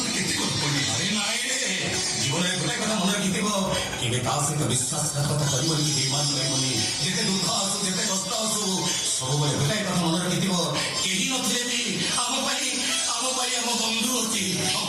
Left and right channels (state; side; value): noise; right; hum, 29 dB below the sound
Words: কেতে কথা বলি। আরে নাই রে, জীবনের গোটাই কথা মনে রাখিଥିବ, କେବେ ତା ସହିତ ବିଶ୍ୱାସଘାତକତା କରିବନି, ବେଇମାନ ରହିବନି। ଯେତେ ଦୁଃଖ ଆସୁ, ଯେତେ କଷ୍ଟ ଆସୁ, ସବୁବେଳେ ଗୋଟାଇ କଥା ମନେ ରାଖିଥିବ, କେହି ନଥିଲେ ବି ଆମ ପାଇଁ ଆମ ବନ୍ଧୁ ଅଛି।